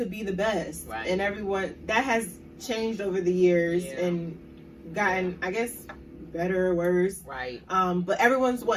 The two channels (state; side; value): identical; both; correlation 1.00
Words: be the best. Right. And everyone, that has changed over the years and gotten, I guess, better or worse. Right. But everyone's